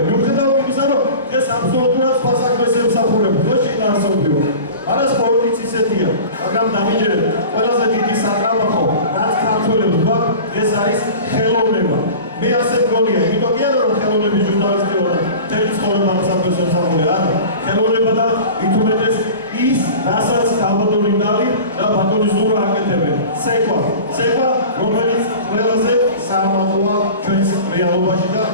მიუხედავად იმისა, რომ ეს აბსოლუტურად სხვა საქმეს ემსახურება, ხო შეინარჩუნებიო. არა სპორტიც ისეთია, მაგრამ დამიჯერეთ, ყველაზე დიდი სატრაბახო, რაც ქართველებს გვაქვს, ეს არის ხელოვნება. მე ასე მგონია, იმიტომ კი არა რომ ხელოვნების ჟურნალისტი ვარ და მთელი ცხოვრება ამ საქმეს ემსახურე, არა. ხელოვნება და ითუმეტეს ის, რასაც გაბატონინდალი და ბატონი ზურა აკეთებენ. ცეკვა, რომელიც ყველაზე საამაყოა ჩვენს რეალობაში და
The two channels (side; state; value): both; inverted; correlation -0.37